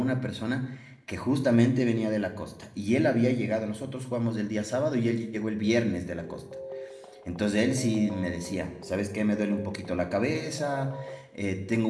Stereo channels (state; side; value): identical; both; correlation 1.00